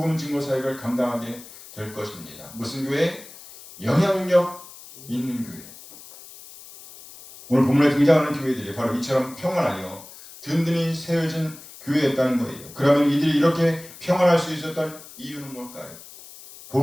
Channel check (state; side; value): noise; left; hiss, 18 dB below the sound